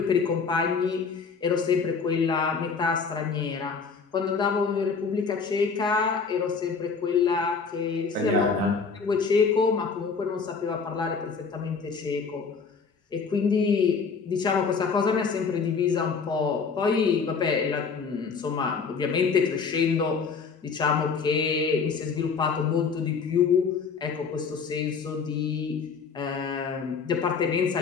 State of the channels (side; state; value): right; quieter; 5.4 dB